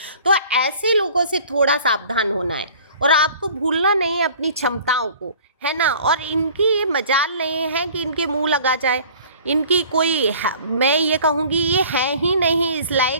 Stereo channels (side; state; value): both; inverted; correlation -0.48